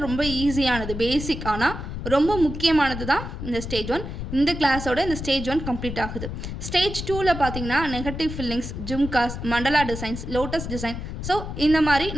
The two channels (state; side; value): noise; left; rumble, 7 dB below the sound